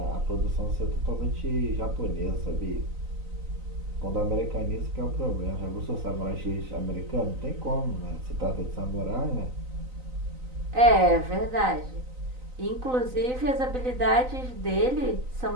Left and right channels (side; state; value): left; late; 3.9 ms